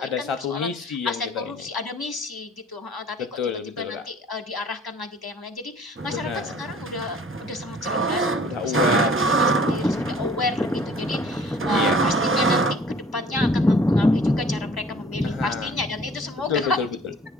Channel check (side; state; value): both; normal; correlation 0.51